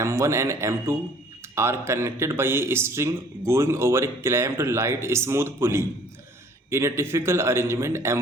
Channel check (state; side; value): normal; both; correlation 0.55